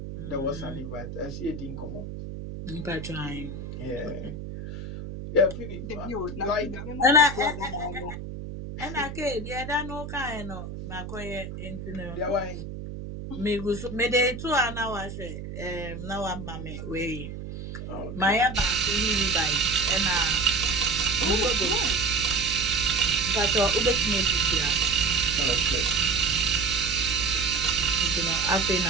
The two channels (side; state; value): right; noise; hum, 9 dB below the sound